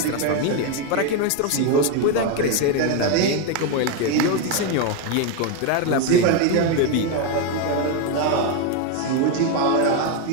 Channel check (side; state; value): both; different; correlation 0.02